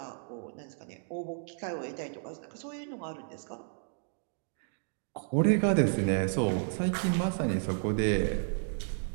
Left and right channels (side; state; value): left; silent; digital silence